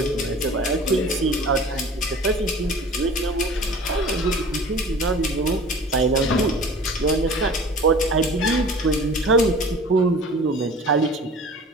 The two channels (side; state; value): both; normal; correlation 0.43